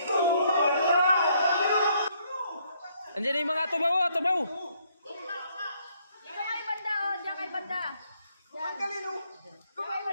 Andiyan yung mga tubaw, tubaw. Diyan kay banda, oh. Diyan kay banda. Diyan kay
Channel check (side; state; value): both; inverted; correlation -0.69